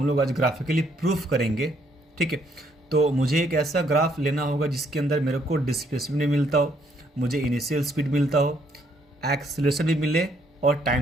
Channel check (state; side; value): normal; both; correlation 0.69